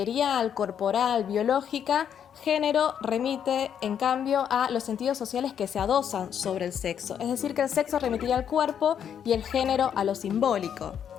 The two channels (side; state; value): right; quieter; 8.6 dB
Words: corporal, biológica, género remite, en cambio, a los sentidos sociales que se adosan sobre el sexo. Es decir, que el sexo remitiría al cuerpo y el género a lo simbólico.